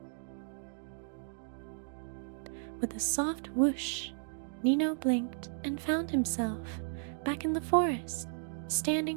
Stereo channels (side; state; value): left; silent; digital silence